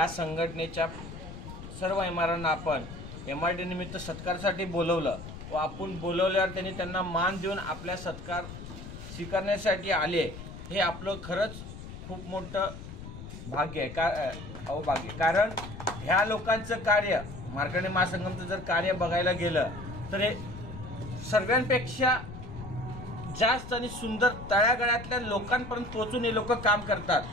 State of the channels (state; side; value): noise; left; rumble, 12 dB below the sound